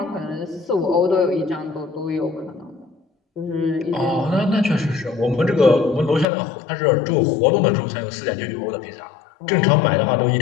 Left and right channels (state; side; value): drops out; right; at 6.2 s